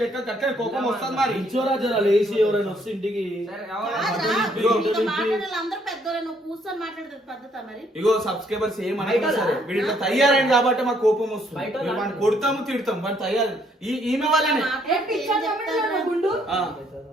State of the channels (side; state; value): both; normal; correlation 0.68